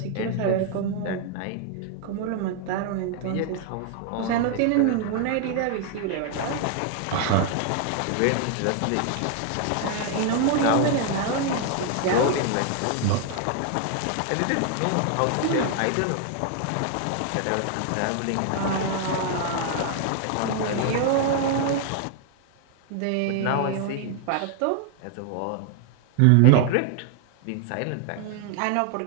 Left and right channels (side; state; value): both; different; correlation 0.00